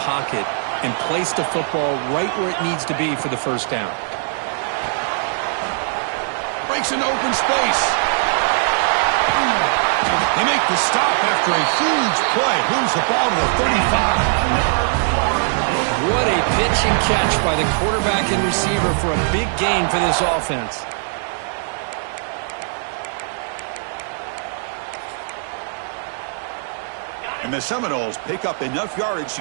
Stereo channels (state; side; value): silent; left; digital silence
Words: pocket and place the football right where it needs to be for the first down. Breaks an open space. They make the stop after a huge play. Moves the ball to the 35. What a pitch and catch by the quarterback and receiver for a big gain for this offense. And the Seminoles pick up enough yardage to